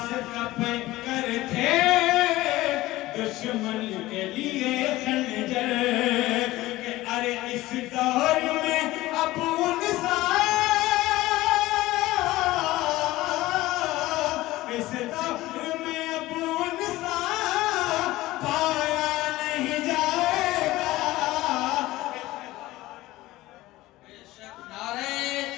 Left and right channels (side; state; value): right; quieter; 17.6 dB